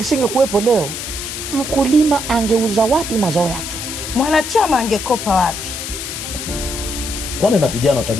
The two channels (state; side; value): noise; left; hiss, 7 dB below the sound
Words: leo, mkulima angeuza wapi mazao yake? Mwanachama angekopa wapi? Kwani na vijana